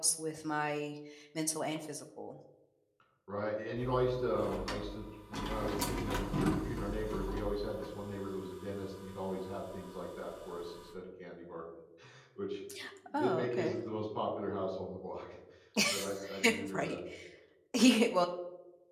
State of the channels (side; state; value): both; identical; correlation 1.00